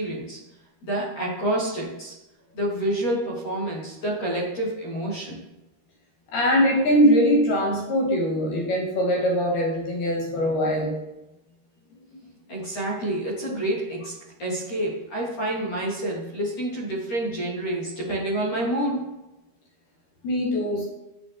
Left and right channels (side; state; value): right; late; 13 ms